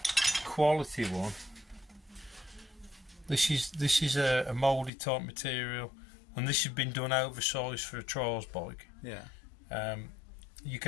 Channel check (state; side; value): drops out; right; at 4.9 s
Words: quality one, this is a moulded type material, and this has been done oversized for a trials bike. You